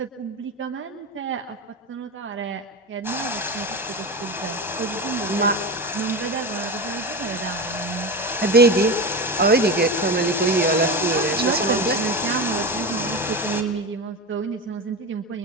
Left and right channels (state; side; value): normal; both; correlation 0.22